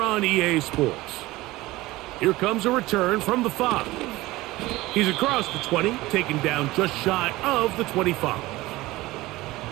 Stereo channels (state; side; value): quieter; left; 19.0 dB